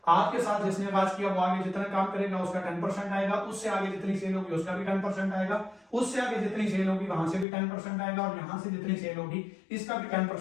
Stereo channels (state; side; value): drops out; right; at 7.5 s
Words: आपके साथ जिसने आगाज किया वो आगे जितना काम करेगा उसका 10% आएगा, उससे आगे जितनी सेल होगी उसका भी 10% आएगा, उससे आगे जितनी सेल होगी वहां से भी 10% आएगा, और यहां से जितनी सेल होगी इसका भी